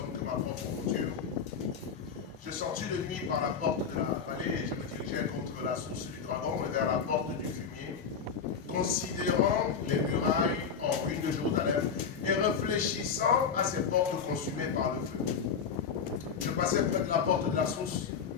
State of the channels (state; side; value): quieter; right; 6.4 dB